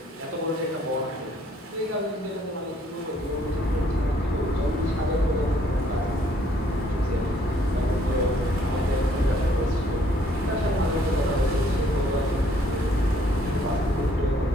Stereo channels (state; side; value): normal; both; correlation 0.65